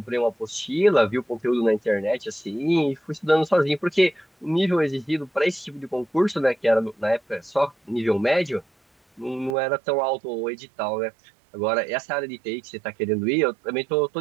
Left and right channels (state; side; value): drops out; left; at 9.6 s